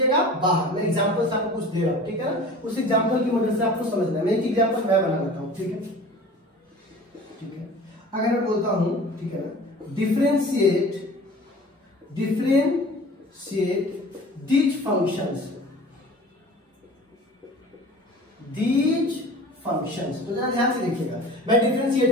बाहर। मैं एग्जांपल आपको कुछ दे रहा हूं, ठीक है ना? उस एग्जांपल की मदद से आपको समझना है। मैं एक एग्जांपल मैं बना लेता हूं, ठीक है? ठीक है, अगर मैं बोलता हूं, ठीक है ना, डिफरेंशिएट these functions, तो जरा ध्यान से देखिएगा, मैं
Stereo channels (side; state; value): both; normal; correlation 0.42